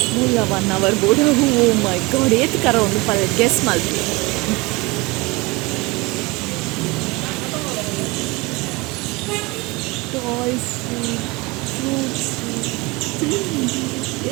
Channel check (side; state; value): left; quieter; 24.3 dB